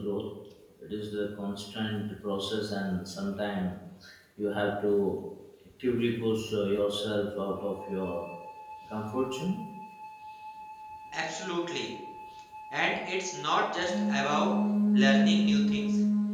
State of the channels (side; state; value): both; identical; correlation 1.00